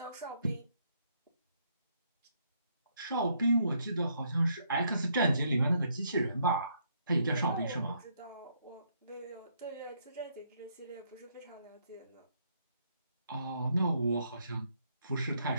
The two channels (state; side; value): inverted; both; correlation -0.72